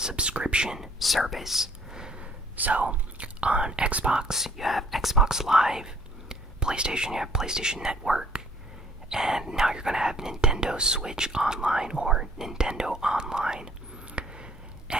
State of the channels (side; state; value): both; normal; correlation 0.59